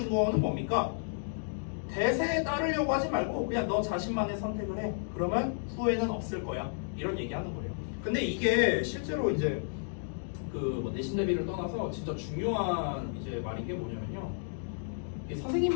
거는 뭡니까? 대세에 따르려고 하지 말고 그냥 너 자신만의 선택을 해. 그러면 후회는 없을 거야. 이런 얘기하는 거예요. 근데 이게 실제로 이제 그 내신 대비를 떠나서 진짜 중요한 이제 말인 게 뭐냐면요.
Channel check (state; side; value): silent; right; digital silence